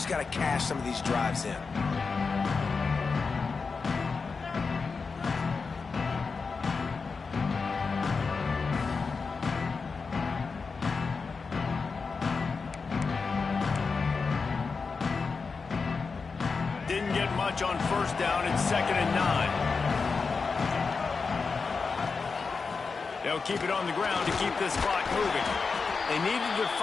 got to cash some of these drives in. Didn't get much on first down. It's 2nd and 9. They'll keep it on the ground to keep this clock moving. They needed to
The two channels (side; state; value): right; quieter; 4.8 dB